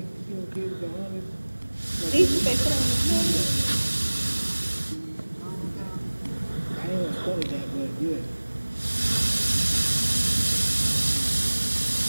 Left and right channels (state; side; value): inverted; both; correlation -1.00